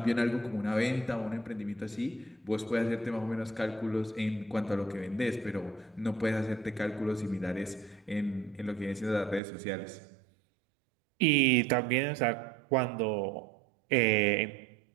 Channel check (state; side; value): drops out; left; at 9.4 s